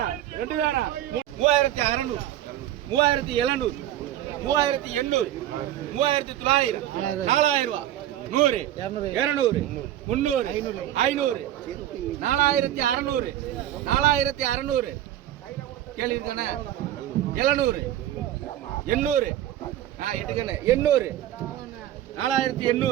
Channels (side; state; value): left; quieter; 12.5 dB